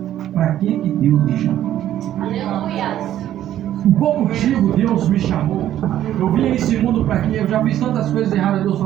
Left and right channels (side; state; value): left; quieter; 12.0 dB